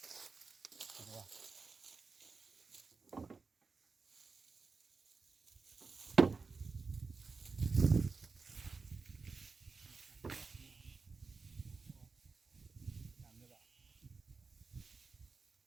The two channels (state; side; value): quieter; left; 4.5 dB